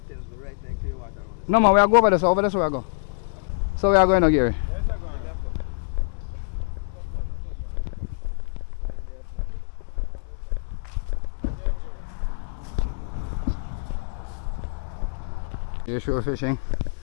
No man, we are go over this. Over this way I go. So we are going now, Gary. You're shore fishing.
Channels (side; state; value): right; silent; digital silence